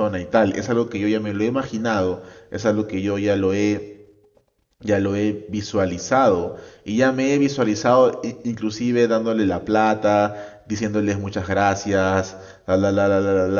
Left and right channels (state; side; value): identical; both; correlation 1.00